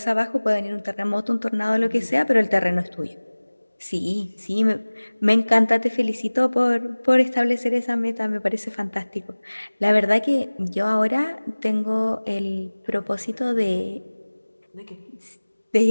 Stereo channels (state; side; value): inverted; both; correlation -1.00